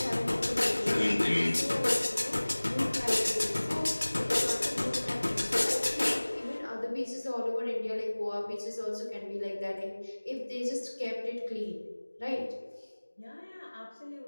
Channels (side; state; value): both; inverted; correlation -1.00